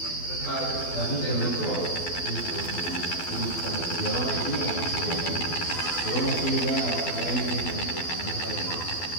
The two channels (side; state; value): right; late; 12 ms